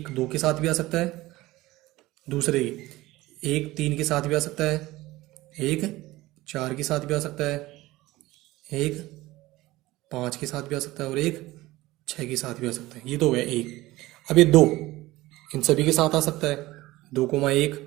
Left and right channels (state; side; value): quieter; left; 18.4 dB